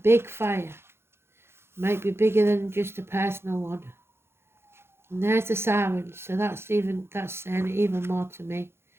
fire. Might be bigger than just a personal one. And there's the sirens, so that's saying even more to me.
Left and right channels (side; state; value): left; late; 0.12 ms